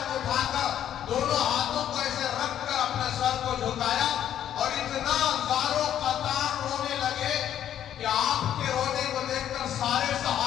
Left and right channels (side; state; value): right; quieter; 10.6 dB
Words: اٹھا کر دونوں ہاتھوں کو ایسے رکھ کر اپنے سر کو جھکایا اور اتنا زارو قطار رونے لگے کہ آپ کے رونے کو دیکھ کر سارے